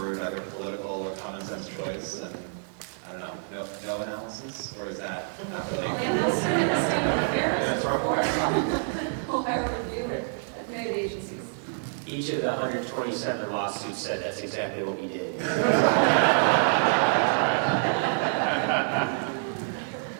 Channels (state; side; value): silent; left; digital silence